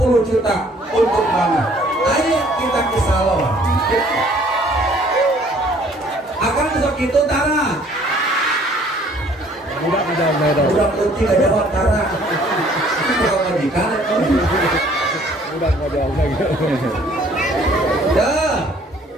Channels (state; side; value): normal; both; correlation 0.58